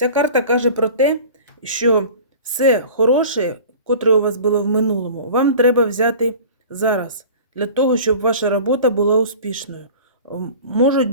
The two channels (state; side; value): inverted; both; correlation -0.40